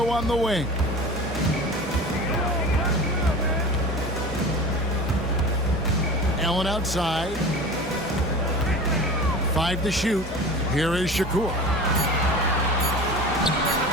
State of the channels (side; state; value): both; normal; correlation 0.35